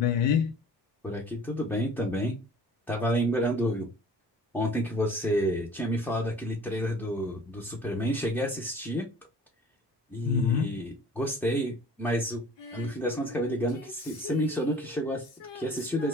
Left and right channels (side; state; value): both; normal; correlation 0.48